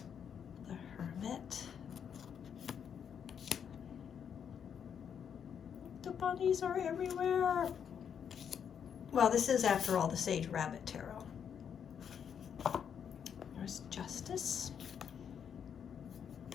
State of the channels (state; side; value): quieter; right; 7.9 dB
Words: The Hermit. The bunnies are everywhere. Well, this is, after all, the Sage Rabbit Tarot. There's Justice.